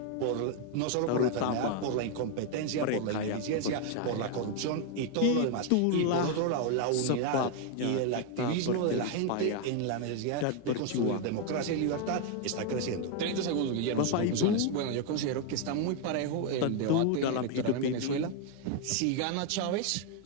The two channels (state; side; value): different; both; correlation 0.01